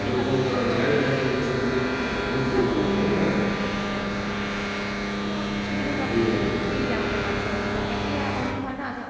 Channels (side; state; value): both; identical; correlation 1.00